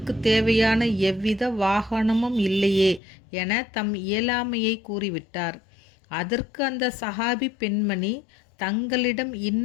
தேவையான எவ்வித வாகனமும் இல்லையே என தம் இயலாமையை கூறிவிட்டார். அதற்கு அந்த சஹாபி பெண்மணி, தங்களிடம்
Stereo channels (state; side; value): drops out; right; at 3.0 s